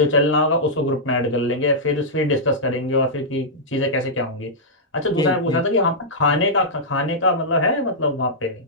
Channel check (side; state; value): both; normal; correlation -0.10